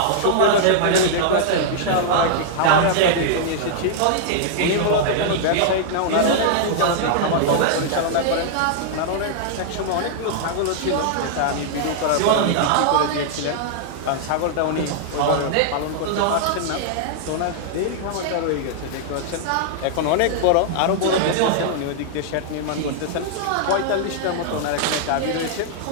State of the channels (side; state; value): both; different; correlation -0.01